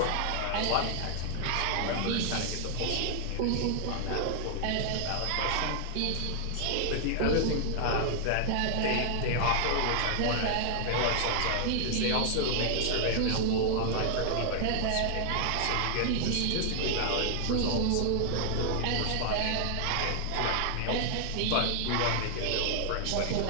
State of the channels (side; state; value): both; different; correlation 0.00